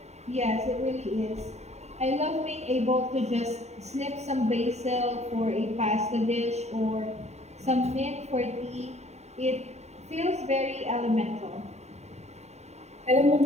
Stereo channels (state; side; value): late; left; 0.32 ms